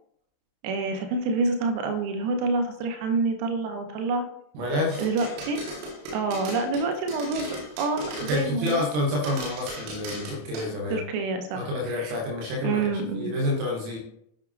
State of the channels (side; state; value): left; late; 27 ms